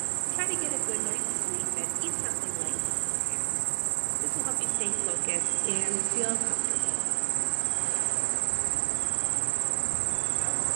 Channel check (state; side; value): silent; left; 57 dB below the other